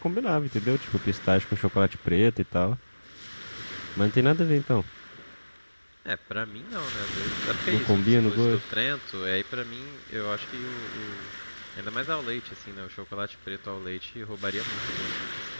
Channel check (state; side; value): inverted; both; correlation -1.00